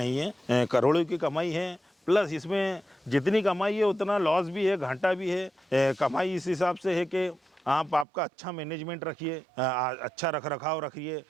है। करोड़ों की कमाई है, प्लस इसमें जितनी कमाई है उतना लॉस भी है, घाटा भी है। कमाई इस हिसाब से है कि आप आपका अच्छा मैनेजमेंट रखिए, अच्छा रख रखाव रखिए,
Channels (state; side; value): drops out; left; at 8.1 s